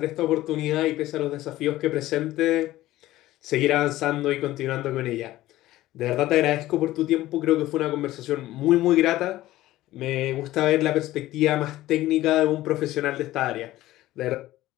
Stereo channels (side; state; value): right; quieter; 15.9 dB